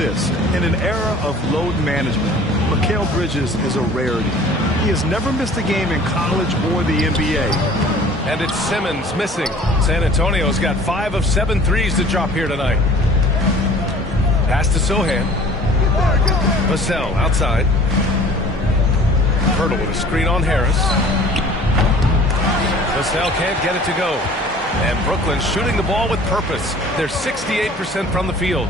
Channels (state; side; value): normal; both; correlation 0.48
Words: In an era of load management, Mikal Bridges is a rarity. He has never missed a game in college or the NBA. And it's Simmons missing. San Antonio's got 5 of 7 threes to drop here tonight. Pass to Sohan. Vassell outside. Pirtle with a screen on Harris. Vassell can't get it to go. And Brooklyn shooting the ball with purpose. They're 68% from the field.